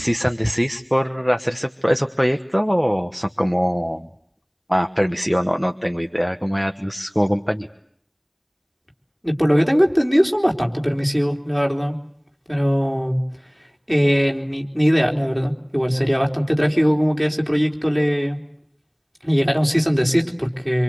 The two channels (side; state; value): both; identical; correlation 1.00